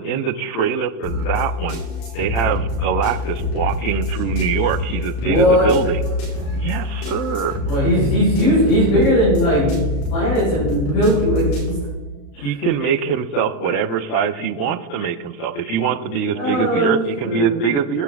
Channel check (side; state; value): right; late; 35 ms